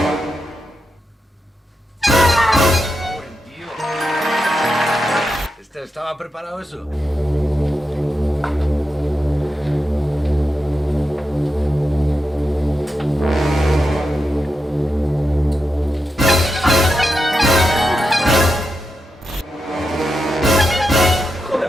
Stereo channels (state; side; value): normal; both; correlation 0.88